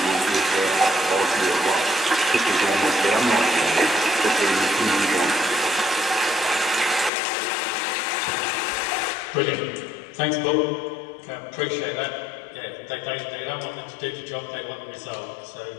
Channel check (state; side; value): drops out; right; at 7.1 s